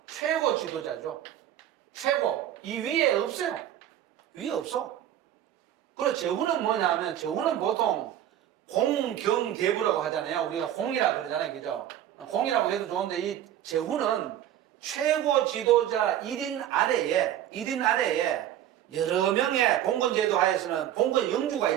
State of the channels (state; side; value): quieter; left; 11.4 dB